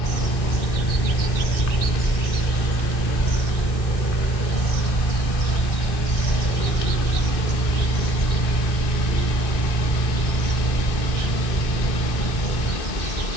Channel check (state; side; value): late; right; 1.6 ms